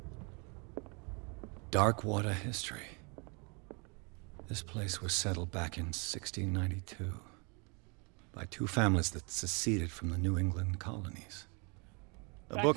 Darkwater history. This place was settled back in 1692 by two families that seceded from the New England colonies. A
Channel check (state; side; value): quieter; left; 32.7 dB